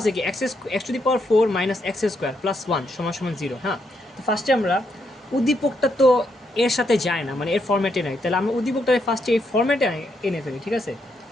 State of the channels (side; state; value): both; normal; correlation 0.78